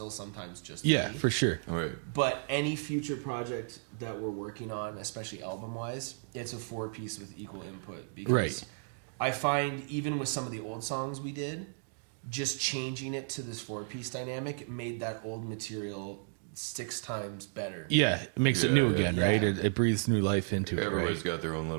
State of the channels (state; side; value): silent; left; digital silence